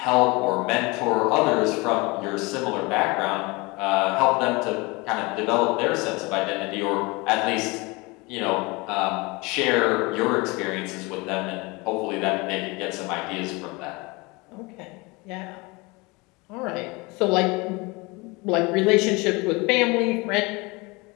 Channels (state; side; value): quieter; right; 25.6 dB